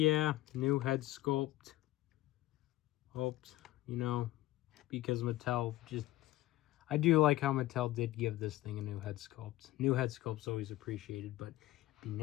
new head sculpt. Hoped, you know, because Mattel just... I do like how Mattel did give this thing a new head sculpt. New head sculpt's always appreciated, but it'd be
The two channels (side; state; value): right; quieter; 16.5 dB